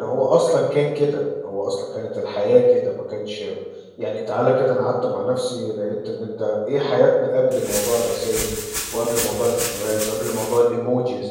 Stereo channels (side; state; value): both; identical; correlation 1.00